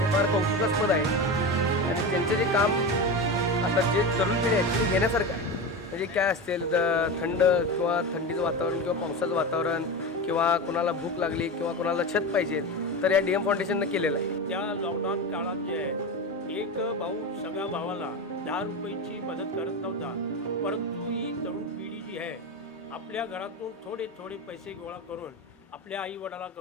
फार कौतुकास्पद आहे. आणि त्यांचं जे काम आता जे तरुण पिढी आहे ते घेण्यासारखं आहे. म्हणजे काय असेल थंड किंवा थंडीचं वातावरण किंवा पावसाचं वातावरण किंवा कोणाला भूक लागली किंवा कोणाला छत पाहिजे तर या डीएम फाउंडेशननं केलेलं आहे. त्या लॉकडाऊन काळात जे आहे एक भाऊ सगळ्या भावाला 10 रुपयाची मदत करत नव्हता, परंतु ही तरुण पिढी जी आहे आपल्या घरातून थोडे थोडे पैसे गोळा करून आपल्या आईवडिला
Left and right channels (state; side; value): normal; both; correlation 0.22